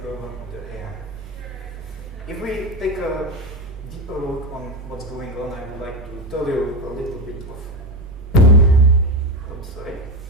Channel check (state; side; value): normal; both; correlation 0.17